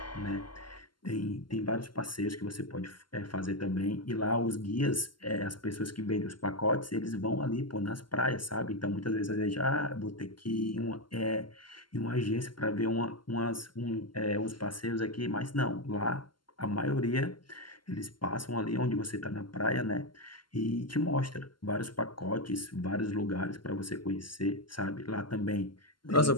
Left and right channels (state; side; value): late; right; 0.72 ms